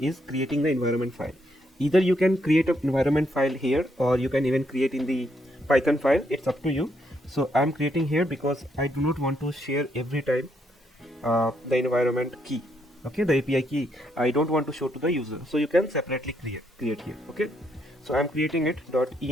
creating the environment file. Either you can create an environment file here or you can even create in the Python file. It's up to you. So I'm creating here because I do not want to share every time the environment key. Okay, the API key I don't want to show to the user. So you can separately create here. Okay, so I'm creating it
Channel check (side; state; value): both; normal; correlation 0.75